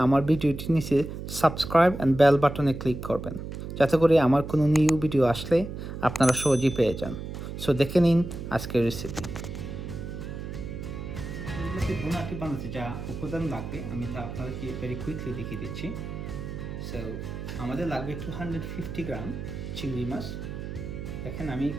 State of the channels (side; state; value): right; noise; hum, 8 dB below the sound